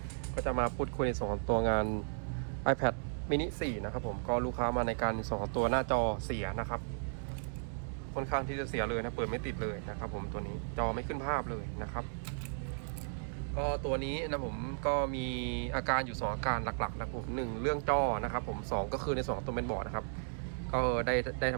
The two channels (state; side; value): silent; left; digital silence